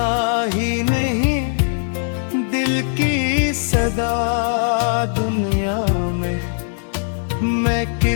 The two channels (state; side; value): silent; right; digital silence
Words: ही नहीं दिल की सदा दुनिया में, मैं